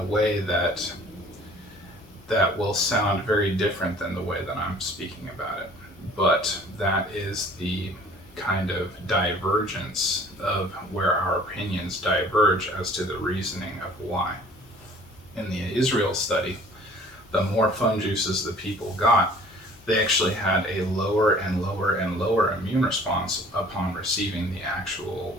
way that will sound very different than the way that I'm speaking about it, but that is the kind of divergence of where our opinions diverge as to the reasoning of why. In the Israel study, the more fun juices the people got, they actually had a lower and lower and lower immune response upon receiving the actual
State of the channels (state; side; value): normal; both; correlation 0.52